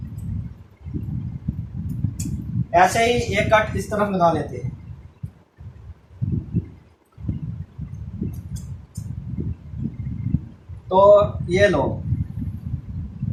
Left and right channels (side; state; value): both; identical; correlation 1.00